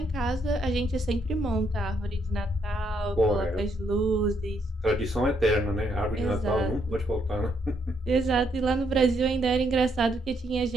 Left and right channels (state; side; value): normal; both; correlation 0.74